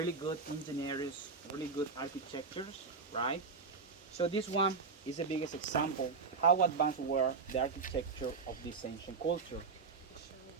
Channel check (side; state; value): left; quieter; 4.7 dB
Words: good engineers, really good architectures, right? So this one is the biggest example how advanced were the architecture of this ancient culture.